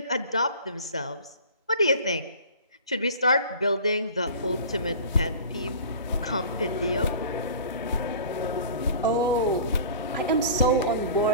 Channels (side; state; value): both; inverted; correlation -0.41